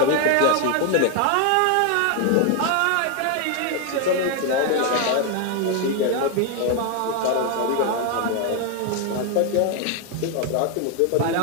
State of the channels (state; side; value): different; both; correlation 0.01